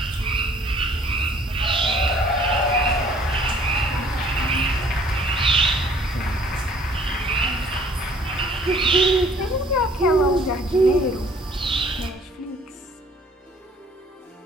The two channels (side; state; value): both; normal; correlation 0.56